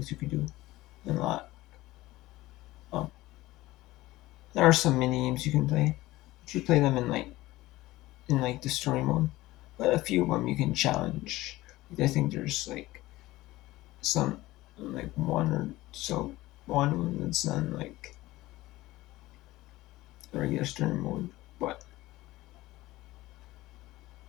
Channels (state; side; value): quieter; right; 17.9 dB